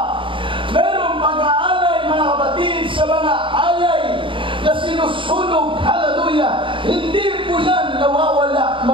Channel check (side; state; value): left; late; 0.25 ms